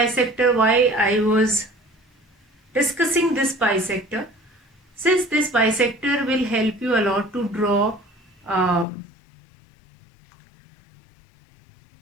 why I was discussing this bisector, since this bisector will help you a lot to draw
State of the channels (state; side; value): drops out; right; at 8.8 s